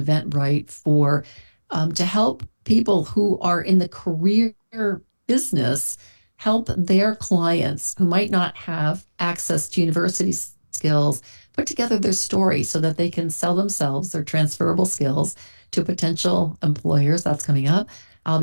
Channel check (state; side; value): inverted; both; correlation -1.00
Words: Eventbrite for to help people who are in the career business help their clients who might not have access to university skills put together their story so that they can sell themselves, their transferable skills, to potential employers. That's coming up. I'll